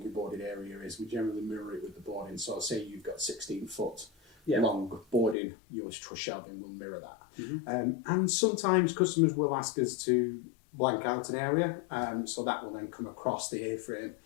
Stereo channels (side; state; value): right; drops out; at 5.4 s